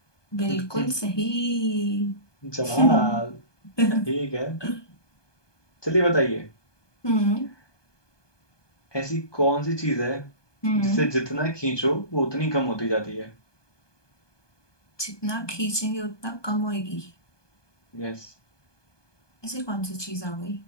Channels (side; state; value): right; late; 1.2 ms